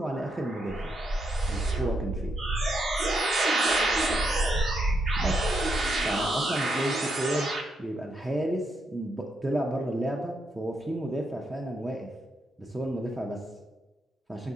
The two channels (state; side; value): normal; both; correlation 0.80